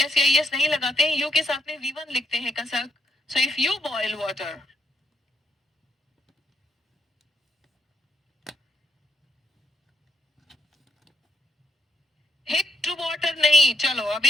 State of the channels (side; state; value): both; normal; correlation 0.80